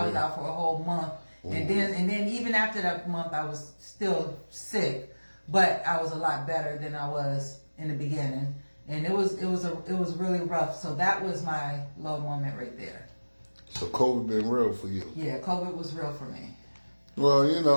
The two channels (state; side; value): inverted; both; correlation -1.00